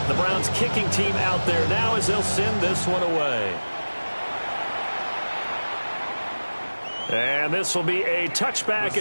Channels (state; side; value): inverted; both; correlation -1.00